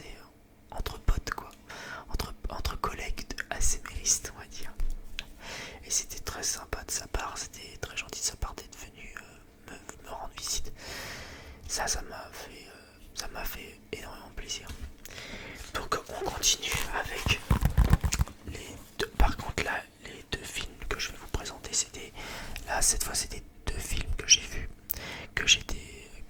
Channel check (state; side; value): identical; both; correlation 1.00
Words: entre potes, quoi, entre collègues ASMRistes, on va dire. Et c'était très sympa de sa part, c'était très gentil de sa part d'être venu me rendre visite. Ça m'a fait énormément plaisir. Donc on continue avec les deux. Par contre là, les deux films que je vais vous présenter, cette fois c'était deux films que j'ai vus, que j'ai